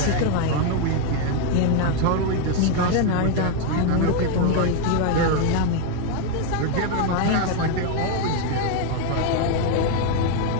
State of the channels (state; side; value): different; both; correlation 0.01